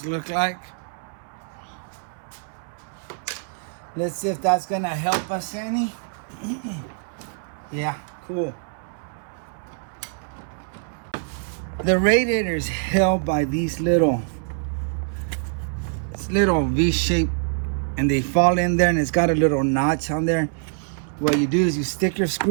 look like. Let's see if that's gonna help us any. Yeah, cool. The radiator is held by these little V-shape, and they fall in there, and it's got a little notch on there. What you do is you stick your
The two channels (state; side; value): silent; left; 62 dB below the other